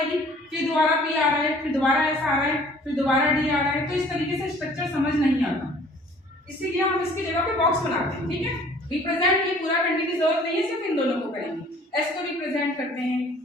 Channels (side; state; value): both; normal; correlation 0.53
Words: फिर दोबारा p आ रहा है, फिर दोबारा s आ रहा है, फिर दोबारा d आ रहा है। तो इस तरीके से स्ट्रक्चर समझ नहीं आता, इसीलिए हम इसकी जगह पे बॉक्स बनाते हैं। ठीक है, रिप्रेजेंट ये पूरा करने की जरूरत नहीं है, सिर्फ इन दोनों को करेंगे। s को रिप्रेजेंट करते हैं